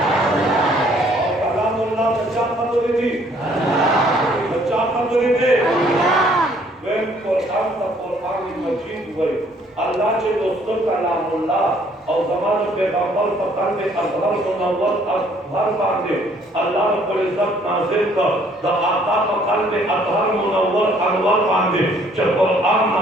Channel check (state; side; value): normal; both; correlation 0.62